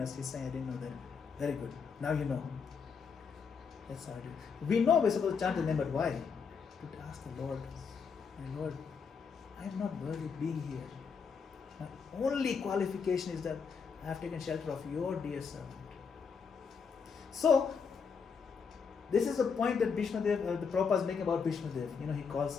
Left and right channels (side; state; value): right; quieter; 5.9 dB